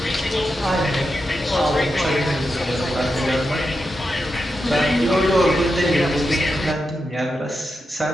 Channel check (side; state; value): both; normal; correlation 0.88